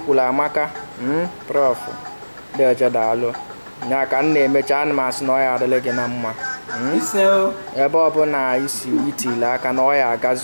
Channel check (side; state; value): both; inverted; correlation -1.00